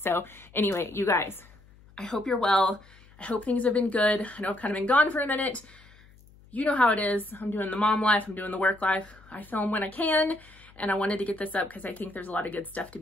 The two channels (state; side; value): noise; left; hum, 25 dB below the sound